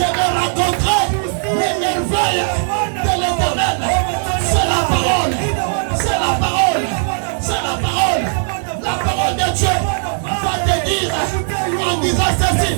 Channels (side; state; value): left; silent; 67 dB below the other